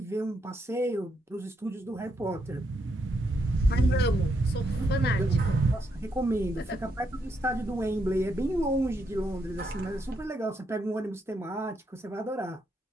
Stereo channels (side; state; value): both; normal; correlation 0.78